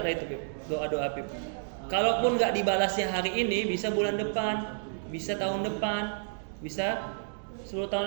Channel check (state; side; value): silent; left; digital silence